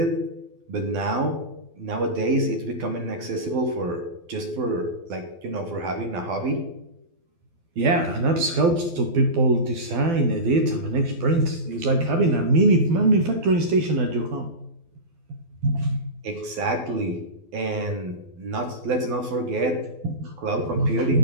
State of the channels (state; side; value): late; left; 12 ms